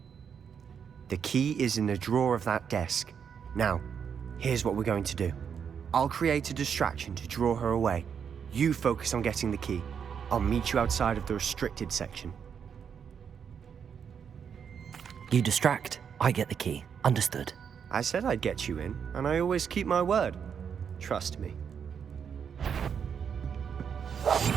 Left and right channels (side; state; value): left; quieter; 7.3 dB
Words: The key is in the drawer of that desk. Now, here's what we're going to do. I'll create a distraction to draw her away. You focus on getting the key. I'll meet you outside of the restricted section. You distract, I get the key. Understood. I said I'd get you in, and I always keep my word. Trust me.